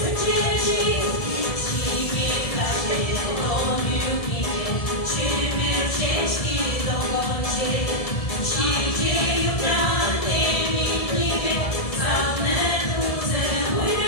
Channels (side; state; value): right; late; 1.7 ms